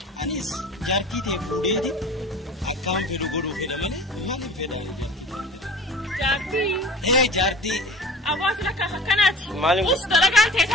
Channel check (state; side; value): normal; both; correlation 0.41